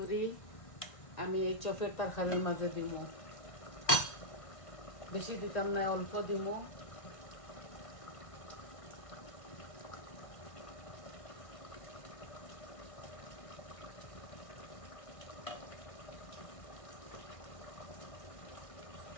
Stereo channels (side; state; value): right; late; 1.6 ms